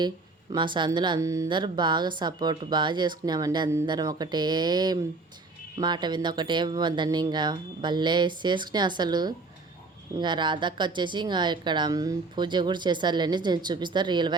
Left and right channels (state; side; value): quieter; left; 3.6 dB